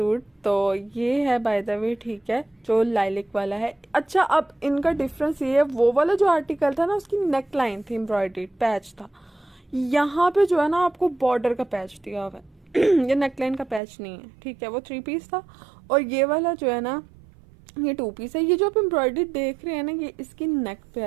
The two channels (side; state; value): left; drops out; at 13.8 s